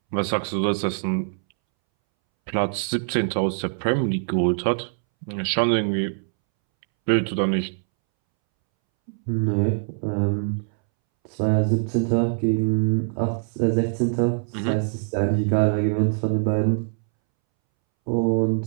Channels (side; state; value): left; silent; 63 dB below the other